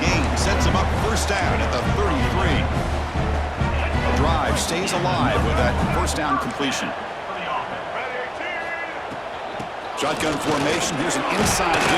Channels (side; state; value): both; identical; correlation 1.00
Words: gain sets them up first down at the 33. The drive stays alive with that first down completion. Shotgun formation. Here's an inside